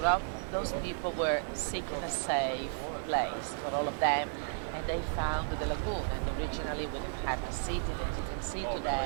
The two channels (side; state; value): left; silent; 55 dB below the other